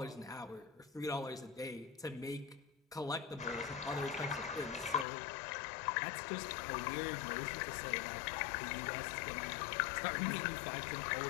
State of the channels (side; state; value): right; drops out; at 5.1 s